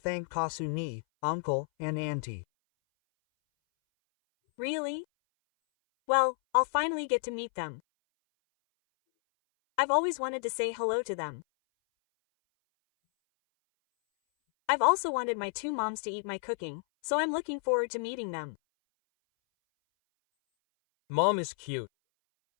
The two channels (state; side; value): silent; right; 57 dB below the other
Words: Kasu-ni, uncle, and auntie. Really? Well, I'll finally get to meet them. I've always wanted to say hello to them. I've also wanted my 2 moms to eat my cooking, so I'm looking forward to meeting them. Mom is cute.